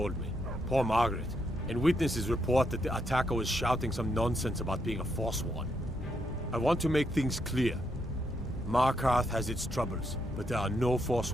me. Poor Margaret. And witnesses report that the attacker was shouting some nonsense about being a Forsworn. I want to make things clear. Markarth has its troubles, but there are no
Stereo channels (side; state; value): both; normal; correlation 0.78